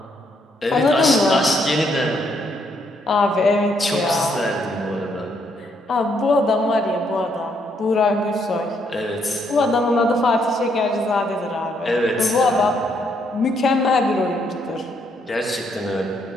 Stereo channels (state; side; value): normal; both; correlation 0.73